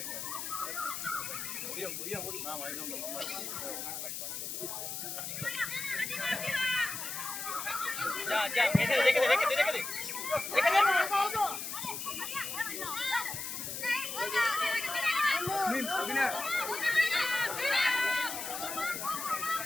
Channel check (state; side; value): noise; left; hiss, 5 dB below the sound